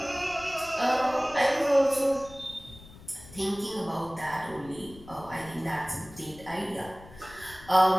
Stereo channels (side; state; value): left; noise; rumble, 19 dB below the sound